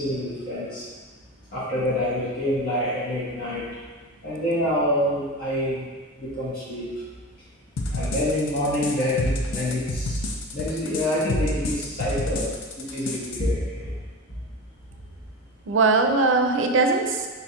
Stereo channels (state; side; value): normal; both; correlation 0.26